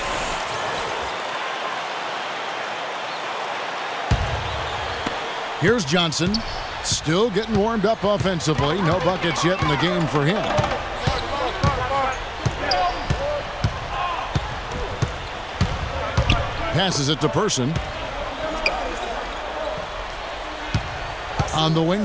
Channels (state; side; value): identical; both; correlation 1.00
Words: Here's Johnson. Still getting warmed up offensively. No buckets yet in the game for him. Passes it to Person. On the